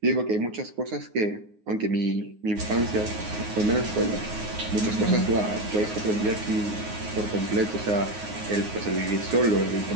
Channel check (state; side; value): late; left; 9.6 ms